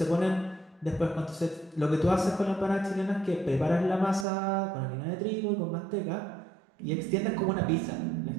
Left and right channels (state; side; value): drops out; left; at 4.2 s